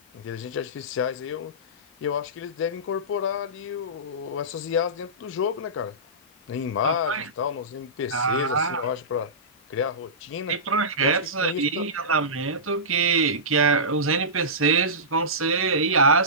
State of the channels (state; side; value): normal; both; correlation -0.19